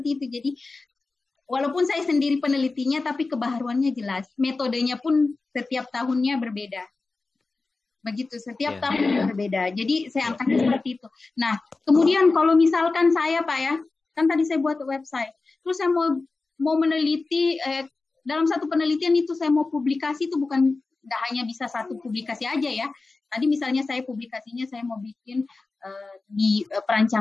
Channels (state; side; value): quieter; right; 3.7 dB